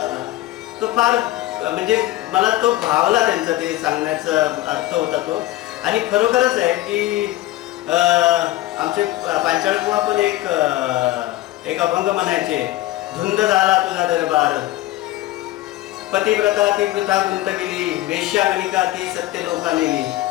तो फार म्हणजे मला तो भावला त्यांचा ते सांगण्याचा अर्थ होता तो. आणि खरोखरच आहे की आमचे पांचाळकुवा पण एक अभंग म्हणायचे. धुंद झाला तुझा दरबार, पतिव्रता ती वृथा गुंतविली, वेश्यागणिका ती सत्य लोका नेली,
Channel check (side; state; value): right; quieter; 16.3 dB